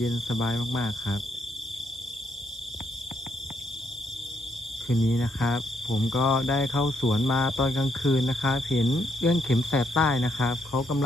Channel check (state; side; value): normal; both; correlation 0.75